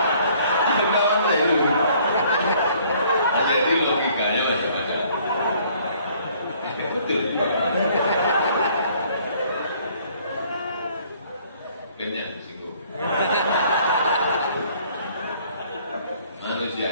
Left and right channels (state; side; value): inverted; both; correlation -0.60